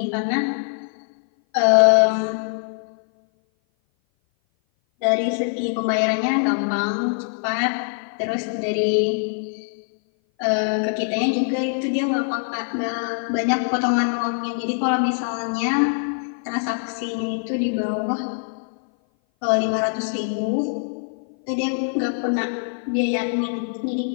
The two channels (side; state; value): right; silent; 57 dB below the other